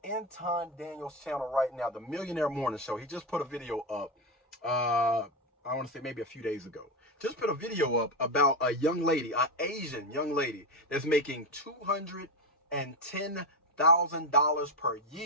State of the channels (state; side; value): normal; both; correlation 0.12